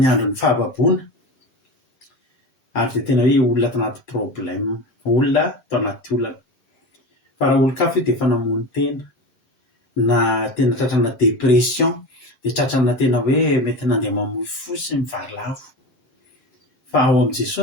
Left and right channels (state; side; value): late; right; 7.8 ms